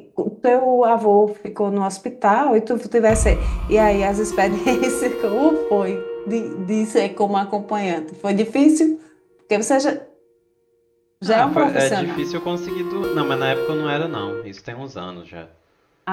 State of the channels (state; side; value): identical; both; correlation 1.00